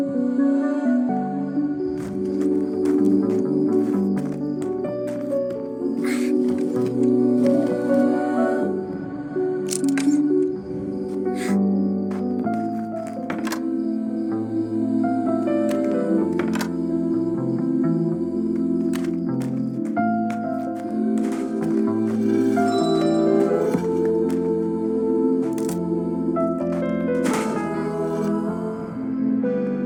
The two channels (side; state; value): both; identical; correlation 1.00